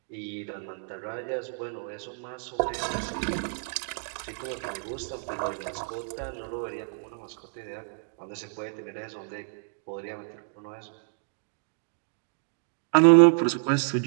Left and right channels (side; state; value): left; silent; digital silence